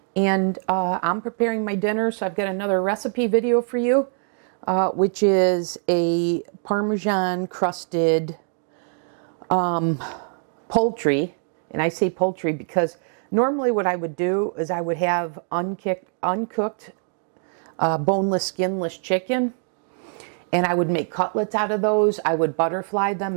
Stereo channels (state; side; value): silent; left; 58 dB below the other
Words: and I'm preparing my dinner, so I've got another recipe video for you, which is a Parmesan crusted poultry. And I say poultry because normally what I would do is I would have uncooked boneless, skinless chicken, and I would make cutlets out of those. I would butterfly